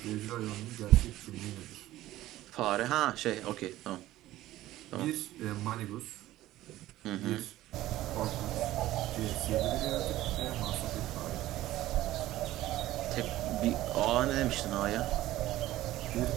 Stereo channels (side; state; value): left; quieter; 15.4 dB